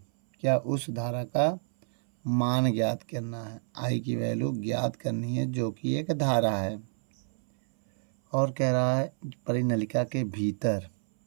क्या? उस धारा का मान ज्ञात करना है। आई की वैल्यू ज्ञात करनी है, जो कि एक धारा है। और कह रहा है परिनलिका के भीतर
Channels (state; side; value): silent; left; 59 dB below the other